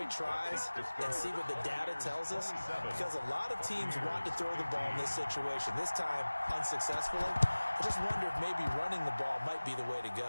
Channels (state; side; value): inverted; both; correlation -1.00